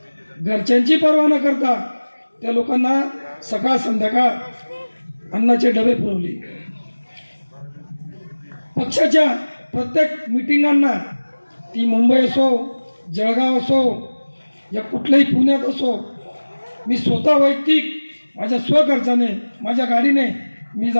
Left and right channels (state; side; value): inverted; both; correlation -1.00